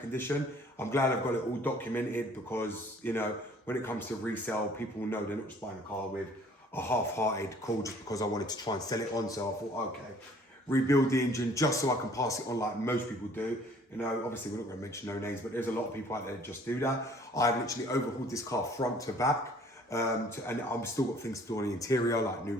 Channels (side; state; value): both; normal; correlation 0.55